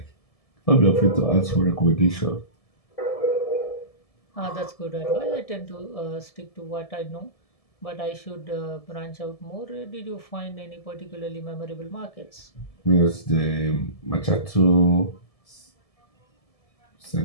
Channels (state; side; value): late; right; 1.7 ms